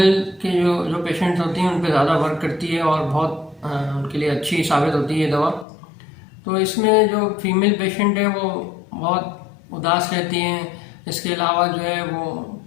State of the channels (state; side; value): drops out; right; at 5.7 s